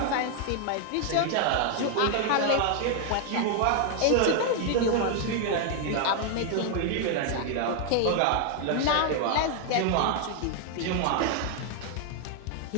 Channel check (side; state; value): both; different; correlation 0.00